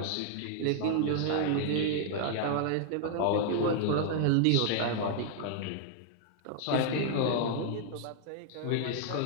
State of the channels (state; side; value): different; both; correlation 0.00